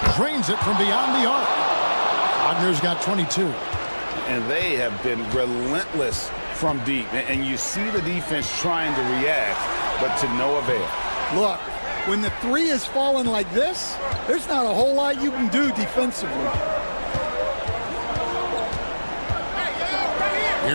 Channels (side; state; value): both; inverted; correlation -1.00